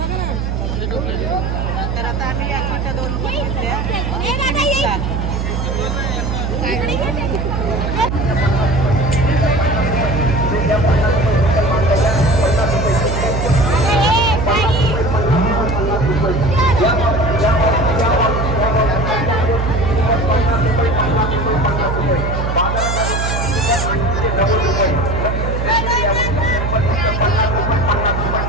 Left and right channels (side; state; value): right; noise; hum, 1 dB below the sound